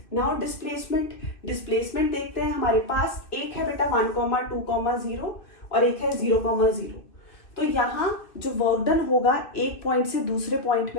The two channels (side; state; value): right; late; 2.6 ms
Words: नाउ डिस्प्लेसमेंट देखते हैं। हमारे पास एक है बेटा 1, 2, 0 और एक है 0, 0। तो यहाँ जो वर्क डन होगा एक पॉइंट से दूसरे पॉइंट